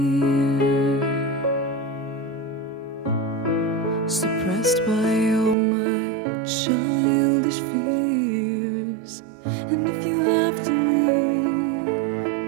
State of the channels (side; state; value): left; drops out; at 5.6 s